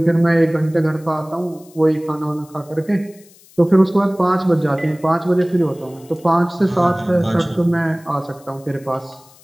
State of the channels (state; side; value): noise; left; hiss, 26 dB below the sound